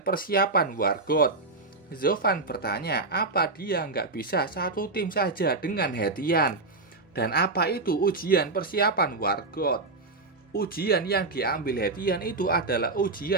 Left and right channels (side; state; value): left; quieter; 3.4 dB